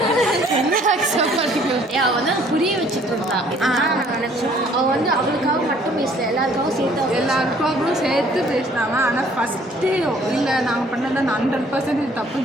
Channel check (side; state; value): both; normal; correlation 0.59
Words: அவள் வந்து புரிய வச்சுட்டு இருந்தான். அவள் வந்து அவளுக்காக மட்டும் பேசல, எல்லாருக்காகவும் சேர்த்து பேசினாங்க. ஆனால் ஃபஸ்ட்டு இல்லை நாங்கள் பண்ணதை 100%